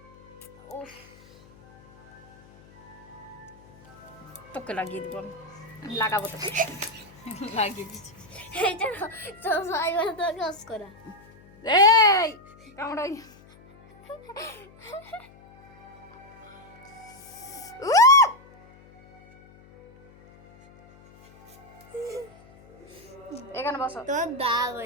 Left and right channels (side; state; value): left; noise; hum, 24 dB below the sound